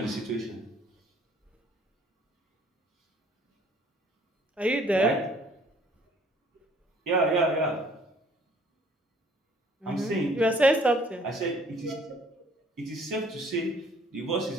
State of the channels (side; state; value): both; normal; correlation 0.58